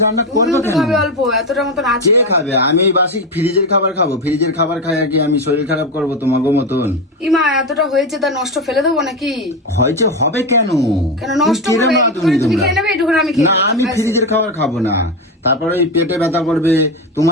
রান্না করবে তুমিও তো কেন? খাবে অল্প, এতটা মতন আছে। কে খাবে? আমি এই বাসি ফ্রিজের খাবার খাবো? ফ্রিজের খাবার খাই আর কি আমি শরীর খারাপ করবো তোমাকে মতন? ইমা এতটা হয়েছে, তা নষ্ট ফেলে দেবো নাকি? হয়েছে হবে কেন? কেন নষ্ট তুমি হবে? কিরম আদমি তুমি তোমরা? খেয়ে নেবে, এটুকুন আমি খেয়ে না, নেবো। আমি ব্যাস। ফ্রিজের খাবার খাবো না, তারপরে ওই পেটে ব্যথা করবে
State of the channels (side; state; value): both; normal; correlation 0.15